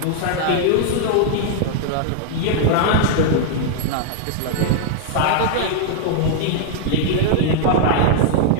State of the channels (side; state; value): both; different; correlation -0.01